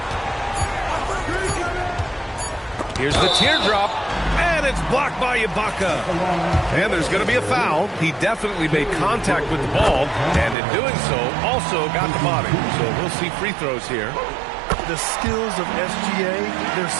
Here's the teardrop. And it's blocked by Ibaka. And there's going to be a foul. He definitely made contact with the ball, and in doing so, also got the body. So we'll see free throws here. The skills of SGA, they're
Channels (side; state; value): left; drops out; at 10.6 s